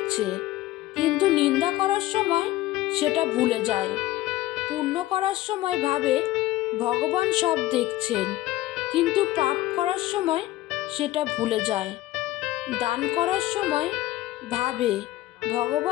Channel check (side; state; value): right; quieter; 16.3 dB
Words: কিন্তু নিন্দা করার সময় সেটা ভুলে যায়। পুণ্য করার সময় ভাবে ভগবান সব দেখছেন, কিন্তু পাপ করার সময় সেটা ভুলে যায়। দান করার সময় ভাবে